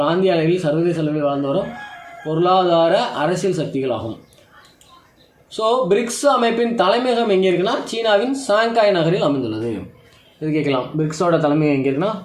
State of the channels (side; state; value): both; identical; correlation 1.00